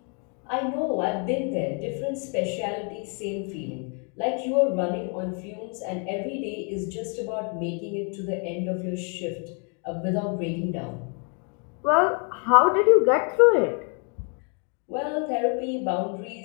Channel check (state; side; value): quieter; right; 39.2 dB